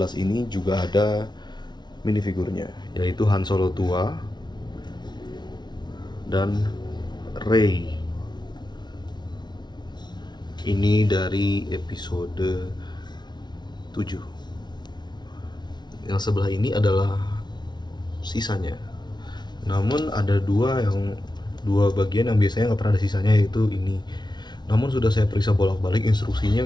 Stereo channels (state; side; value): late; right; 0.20 ms